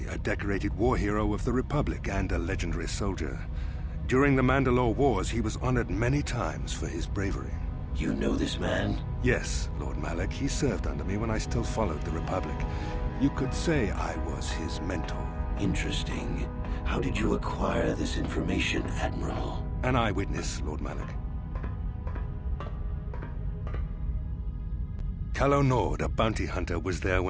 a decorated war hero of the Republic and a legendary soldier. During the Mandalore Wars, he was honored many times for his bravery. You know this man? Yes, Lord Malak. He served under me when I still followed the Republic. You could say I was his mentor. Interesting. How did you acquire this information, Admiral? An eyewitness, Lord Malak. Calo Nord, a bounty hunter, was there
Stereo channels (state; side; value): identical; both; correlation 1.00